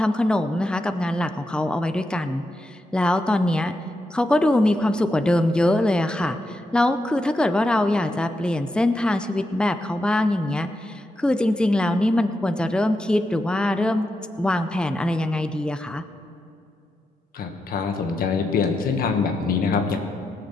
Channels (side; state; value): both; normal; correlation 0.86